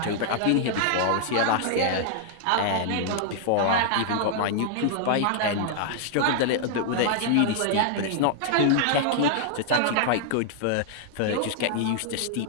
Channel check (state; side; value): different; both; correlation -0.01